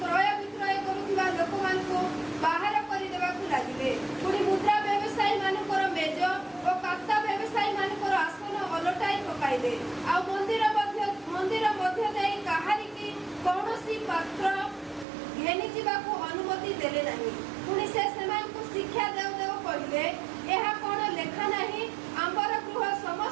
ବିକ୍ରୟ କରୁଥିବା ଲୋକମାନଙ୍କୁ ବାହାର କରିଦେବାକୁ ଲାଗିଲେ। ପୁଣି ମୁଦ୍ରା ବ୍ୟବସାୟୀମାନଙ୍କର ମେଜ ଓ କାତା ବ୍ୟବସାୟୀମାନଙ୍କର ଆସନ ଓଲଟାଇ ପକାଇଲେ। ଆଉ ମନ୍ଦିର ମଧ୍ୟ ଦେଇ କାହାରିକି କୌଣସି ପାତ୍ର ଘେନି ଯିବାକୁ ଅନୁମତି ଦେଲେ ନାହିଁ। ପୁଣି ସେ ସେମାନଙ୍କୁ ଶିକ୍ଷା ଦେଉ ଦେଉ କହିଲେ, ଏହା କ'ଣ ଲେଖା ନାହିଁ, ଆମ୍ବର ଗୃହ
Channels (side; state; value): left; drops out; at 15.1 s